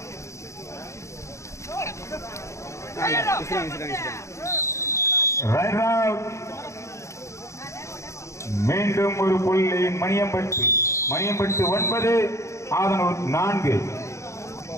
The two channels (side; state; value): right; late; 0.14 ms